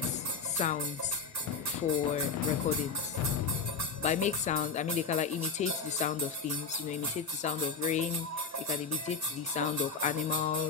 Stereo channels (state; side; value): quieter; right; 5.0 dB